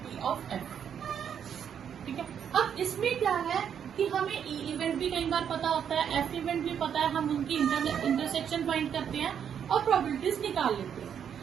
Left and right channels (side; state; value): left; quieter; 8.3 dB